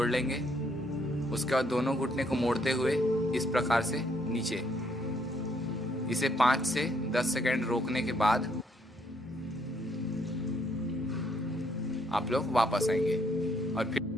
लेंगे। उसके बाद दोनों घुटने को मोड़ते हुए इस प्रकार से नीचे। इसे 5 से 10 सेकंड रोकने के बाद आप लोग वापस आएंगे और फिर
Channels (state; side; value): normal; both; correlation 0.70